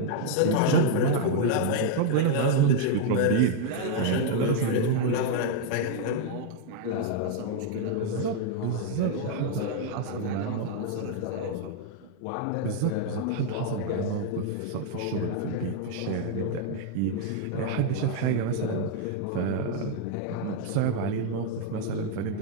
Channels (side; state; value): both; different; correlation 0.00